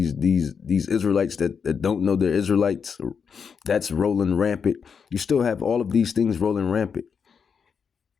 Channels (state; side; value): quieter; right; 6.4 dB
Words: that don't know they're Israelites. That's rolling rampant. You still have all of these things rolling rampant.